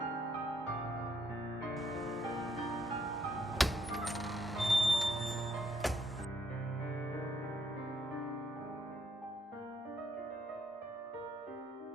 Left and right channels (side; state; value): both; normal; correlation 0.72